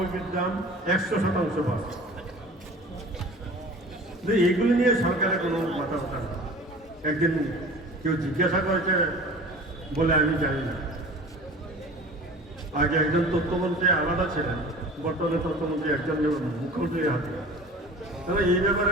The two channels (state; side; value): normal; both; correlation 0.41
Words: দাম 100% বাড়ছে। এগুলো নিয়ে সরকারের কোনো কথাবার্তা না। একদিন কেউ জিজ্ঞাসা করেছে বলে আমি জানি না। আগে একজন তথ্যমন্ত্রী আলাদা ছিলেন, বর্তমানে তথ্যমন্ত্রী একজন মুখ্যমন্ত্রীর হাতে। তবে এই